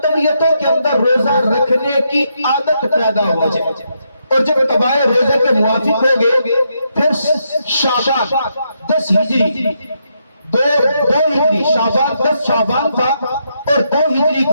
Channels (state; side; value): inverted; both; correlation -0.79